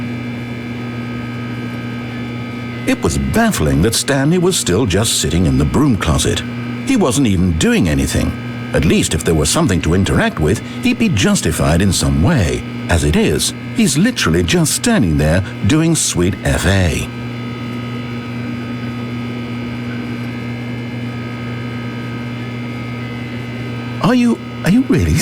It was baffling that Stanley was still just sitting in the broom closet. He wasn't even doing anything. At least if there was something to interact with, he'd be justified in some way. As it is, he's literally just standing there doing sweet FA. Are you really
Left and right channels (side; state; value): both; identical; correlation 1.00